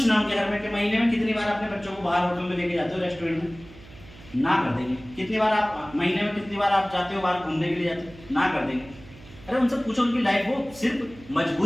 उनके घर में कि महीने में कितनी बार अपने बच्चों को बाहर होटल में लेके जाते हो, रेस्टोरेंट में? ना कर देंगे। कितनी बार आप महीने में कितनी बार आप जाते हो बाहर घूमने के लिए जाते हो? ना कर देंगे। अरे उनसे पूछो उनकी लाइफ वो सिर्फ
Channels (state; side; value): noise; right; hum, 20 dB below the sound